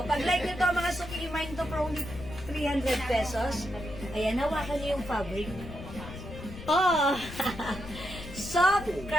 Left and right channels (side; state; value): left; noise; rumble, 12 dB below the sound